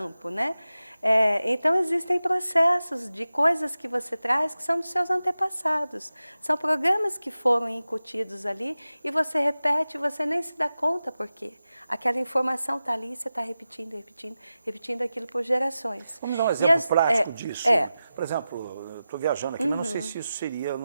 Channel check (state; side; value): inverted; both; correlation -0.94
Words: né? Então, existem processos de coisas que você traz que são dos seus antepassados. São programas que foram incutidos ali e você repete e você nem se dá conta por quê. Aquela informação está ali e você está repetindo, repetindo, repetindo aquilo por gerações. Vamos dar um exemplo prático disso. Por exemplo, eu estou viajando aqui, mas não sei se isso seria